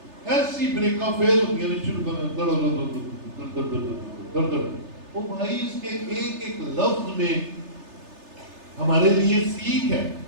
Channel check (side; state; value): left; late; 3.3 ms